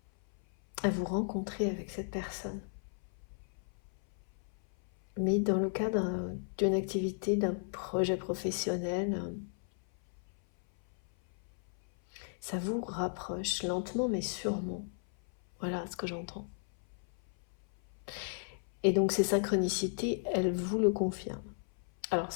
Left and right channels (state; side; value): silent; right; 55 dB below the other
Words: à vous rencontrer avec cette personne. Mais dans le cadre d'une activité, d'un projet professionnel, ça vous rapproche lentement mais sûrement. Voilà ce que j'entends. Et donc ces synchronicités, elles vous le confirment. Alors